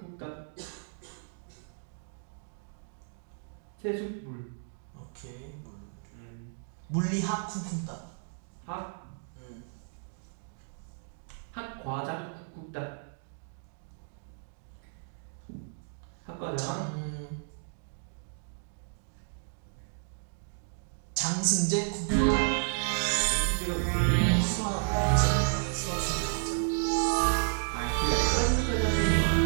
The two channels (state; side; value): silent; left; digital silence